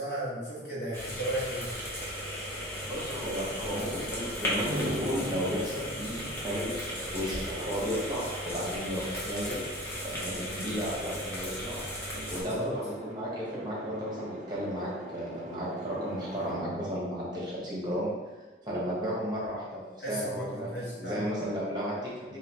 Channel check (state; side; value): normal; both; correlation 0.37